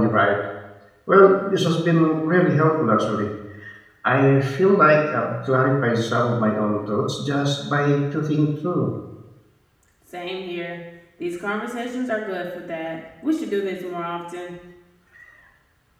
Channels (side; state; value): both; identical; correlation 1.00